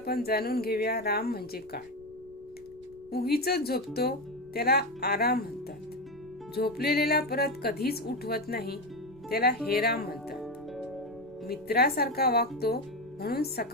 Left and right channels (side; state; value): left; noise; rumble, 26 dB below the sound